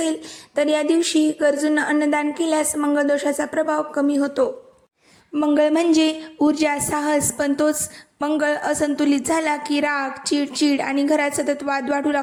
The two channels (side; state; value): both; identical; correlation 1.00